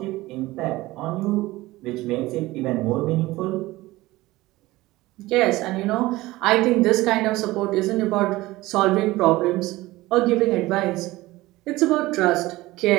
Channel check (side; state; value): left; quieter; 18.7 dB